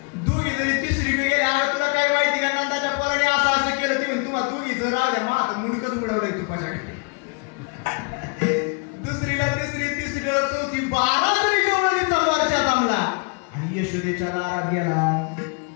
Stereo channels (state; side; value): quieter; right; 33.4 dB